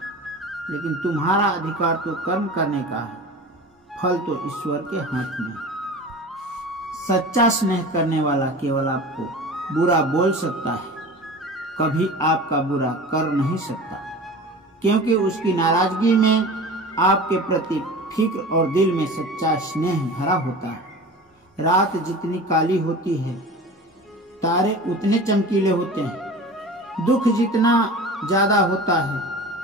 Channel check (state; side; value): normal; both; correlation 0.36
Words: लेकिन तुम्हारा अधिकार तो कर्म करने का है, फल तो ईश्वर के हाथ में। सच्चा स्नेह करने वाला केवल आपको बुरा बोल सकता है, कभी आपका बुरा कर नहीं सकता, क्योंकि उसकी नाराजगी में आपके प्रति फिक्र और दिल में सच्चा स्नेह भरा होता है। रात जितनी काली होती है, तारे उतने चमकीले होते हैं। दुख जितना ज्यादा होता है,